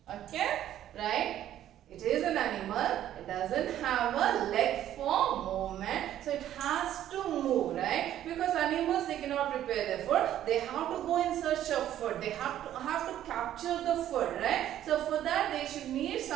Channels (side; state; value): left; quieter; 11.8 dB